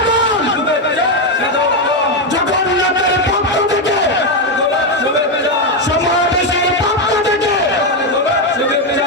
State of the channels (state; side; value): normal; both; correlation 0.06